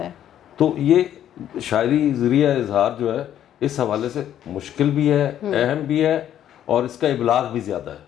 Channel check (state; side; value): quieter; right; 10.8 dB